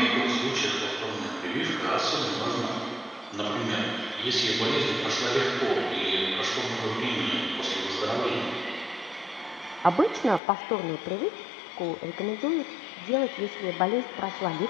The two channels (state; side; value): drops out; right; at 10.4 s